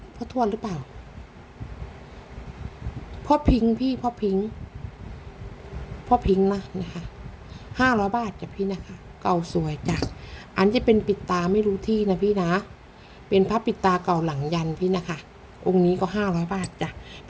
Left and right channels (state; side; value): identical; both; correlation 1.00